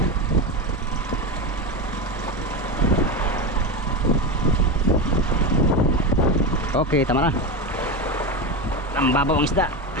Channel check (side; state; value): both; normal; correlation 0.17